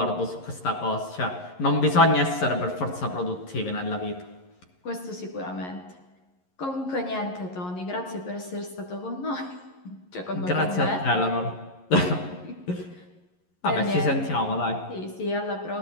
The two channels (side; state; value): right; late; 11 ms